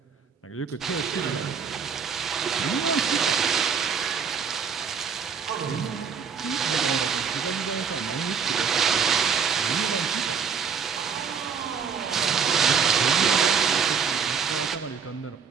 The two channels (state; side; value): quieter; left; 6.5 dB